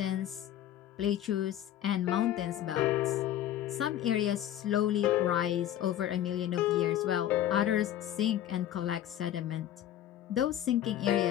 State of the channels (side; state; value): right; quieter; 11.8 dB